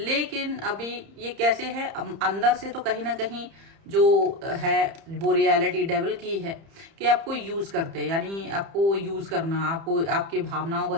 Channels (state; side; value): late; left; 30 ms